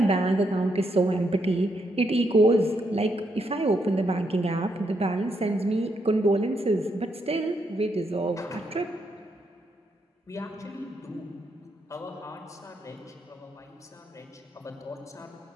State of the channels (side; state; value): both; normal; correlation 0.78